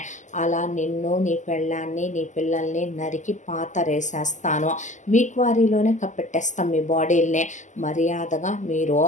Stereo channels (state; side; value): late; right; 0.35 ms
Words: అలా నిన్ను నీ పెళ్ళాన్ని నీ పిల్లల్ని నరికి పాతరేసేస్తాను, మీ క్వారీలోనే కప్పెట్టేస్తాం మీ బాడీల్ని. మర్యాదగా మీరు